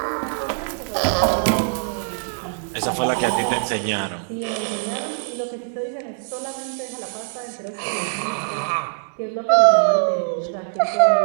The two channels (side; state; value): left; silent; digital silence